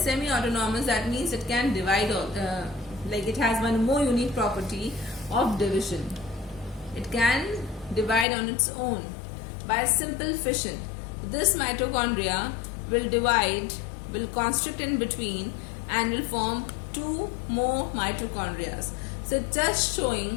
that means it can divide, like it has one more unique property of division. It can divide on its own by simple fission. This mitochondria will divide, will constrict in between, and will form two more mitochondria. So just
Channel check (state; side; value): drops out; right; at 8.2 s